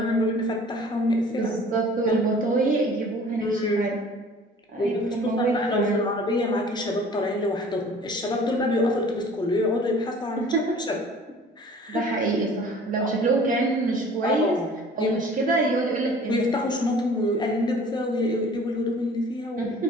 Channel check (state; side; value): normal; both; correlation 0.48